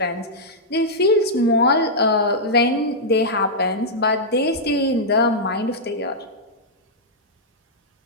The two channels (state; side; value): normal; both; correlation -0.08